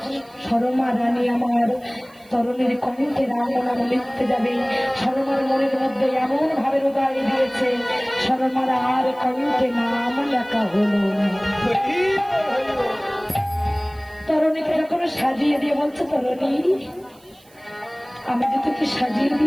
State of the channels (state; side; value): noise; right; hiss, 29 dB below the sound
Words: সরমা রানী আমার তরুণীর কণ্ঠে রাম নাম লিখতে যাবে, সরমার মনের মধ্যে এমন ভাবে হৃদয় দিয়েছে, সরমার আর কণ্ঠে নাম লেখা হলো না। তরুণীকে যখন সাজিয়ে দিয়ে বলছে, তরুণী আমি যে তোকে সাজিয়ে